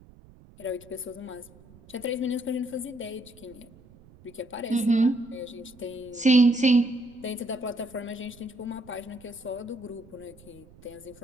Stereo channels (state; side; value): noise; right; rumble, 23 dB below the sound